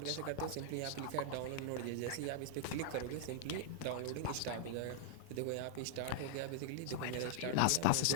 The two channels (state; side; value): different; both; correlation -0.01